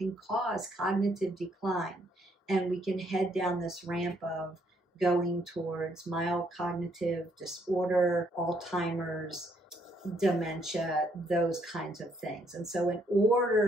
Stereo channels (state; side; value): normal; both; correlation 0.71